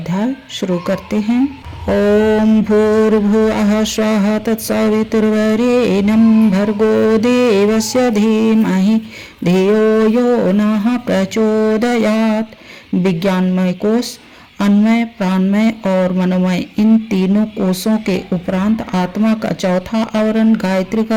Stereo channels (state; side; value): identical; both; correlation 1.00